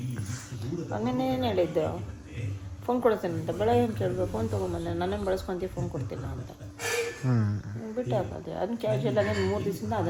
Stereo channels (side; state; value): both; identical; correlation 1.00